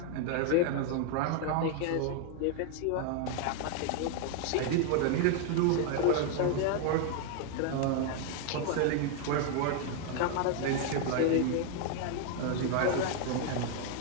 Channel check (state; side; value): different; both; correlation 0.00